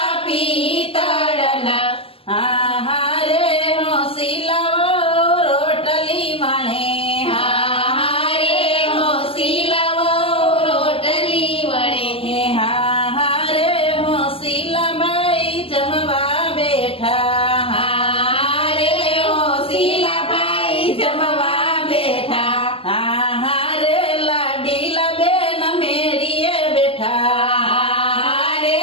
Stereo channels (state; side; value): late; right; 0.27 ms